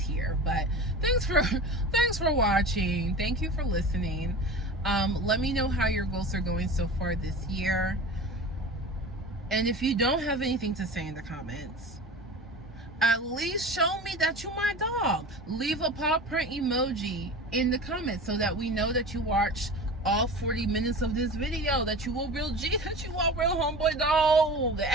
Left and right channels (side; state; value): both; normal; correlation 0.34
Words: but thanks for watching. Thank you for listening. Let me know how your goals are going so far this year. And if you don't have anything to say in the comments, at least show me that you my dog. Leave a paw print emoji in the comments so that we know that you watched all 40 minutes of this video, that you a real G, that you a real homeboy dog.